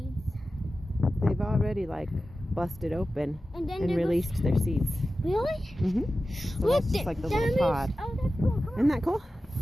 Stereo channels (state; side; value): normal; both; correlation 0.94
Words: they've already like busted open And then and they're released their seeds. Really? Mm-hmm. So Look, that's just like the that little means- pod. Oh, that's cool. Come on. Isn't that cool?